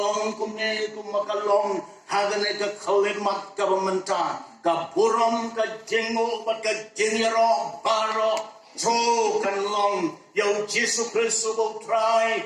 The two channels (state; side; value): identical; both; correlation 1.00